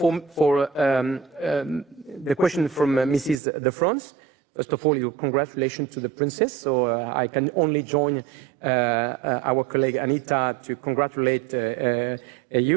the question from Mrs. De France, first of all, congratulations to the princess. So I can only join our colleague Anita to congratulate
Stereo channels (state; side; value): drops out; left; at 3.4 s